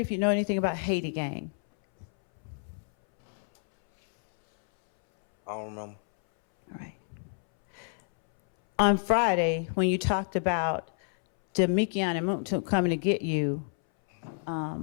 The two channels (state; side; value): silent; right; 59 dB below the other